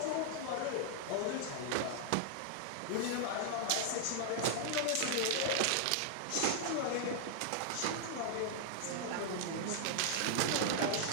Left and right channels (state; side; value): different; both; correlation 0.00